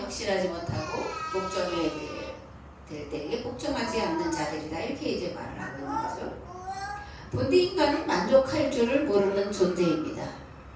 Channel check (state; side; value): identical; both; correlation 1.00